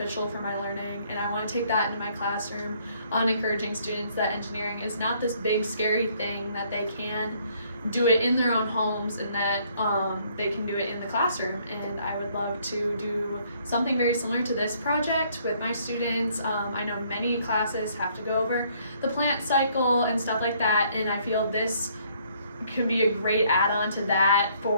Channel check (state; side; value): inverted; both; correlation -0.65